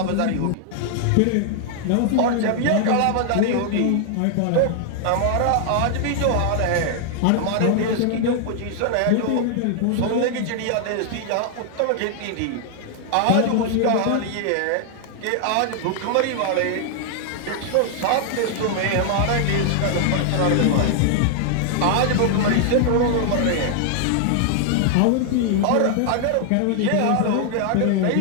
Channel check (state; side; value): different; both; correlation 0.00